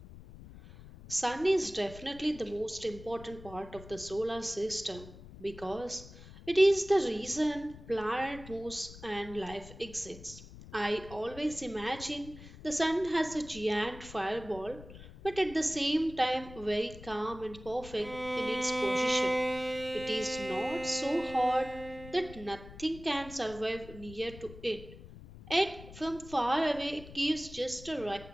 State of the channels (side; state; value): left; noise; rumble, 16 dB below the sound